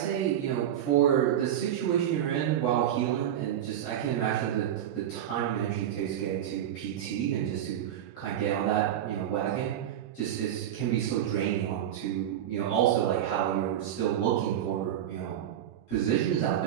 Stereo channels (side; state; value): left; quieter; 10.8 dB